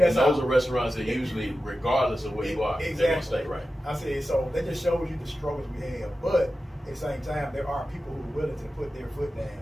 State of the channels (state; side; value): normal; both; correlation 0.93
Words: and those are restaurants that usually, regardless of where you are, exactly. they're gonna stay right. I said, so that just shows you the struggles we have. But at the same time, there are people who are willing to put their foot down